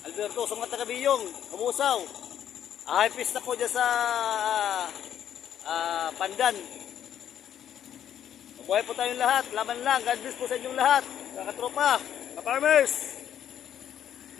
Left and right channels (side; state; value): right; quieter; 10.0 dB